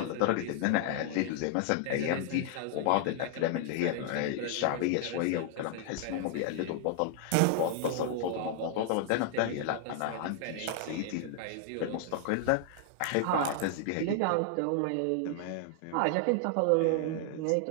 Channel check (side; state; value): both; different; correlation 0.00